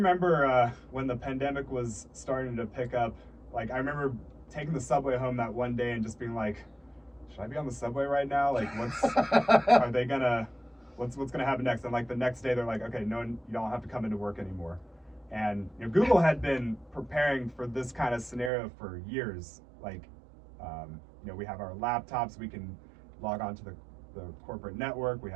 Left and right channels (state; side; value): drops out; left; at 18.5 s